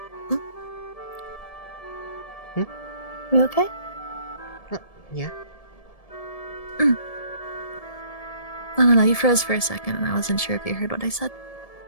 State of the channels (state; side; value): late; right; 1.7 ms